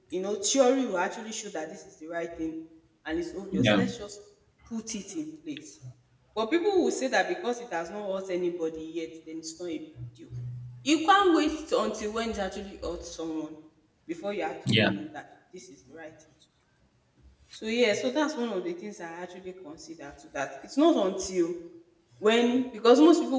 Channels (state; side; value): identical; both; correlation 1.00